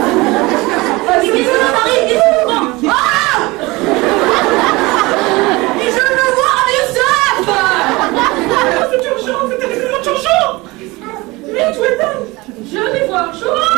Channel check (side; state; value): left; quieter; 22.5 dB